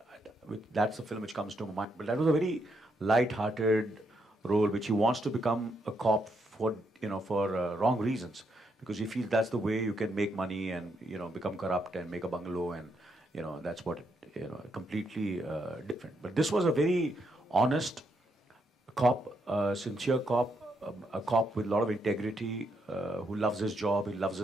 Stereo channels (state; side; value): normal; both; correlation 0.78